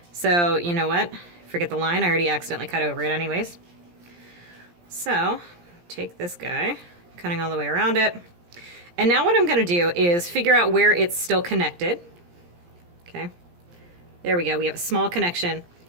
So, you know what? Forget the line. I already accidentally cut over it anyways. So, take this guy, cutting all the way around it. And now what I'm going to do is figure out where it's still connected. Okay, there we go. We have a small connection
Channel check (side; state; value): left; late; 17 ms